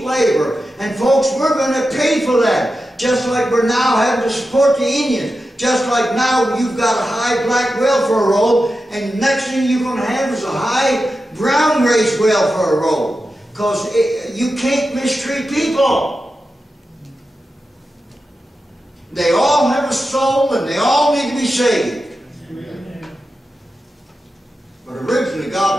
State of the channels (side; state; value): both; normal; correlation 0.91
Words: labor. And folks, we're going to pay for that. Just like we're now having to support the Indians. Just like now you've got a high black welfare roll, and next thing you're going to have is a high brown race welfare roll. Because you can't mistreat people. They all have a soul, and they all need to be saved. But originally